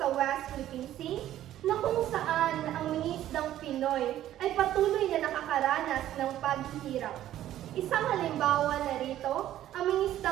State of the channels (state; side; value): quieter; left; 12.7 dB